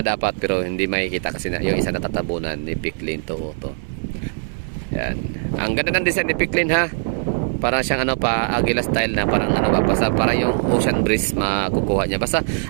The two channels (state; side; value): silent; left; digital silence